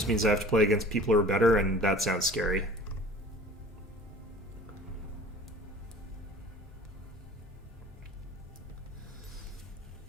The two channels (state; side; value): normal; both; correlation 0.45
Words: means I have to play against people who are better, and that sounds scary.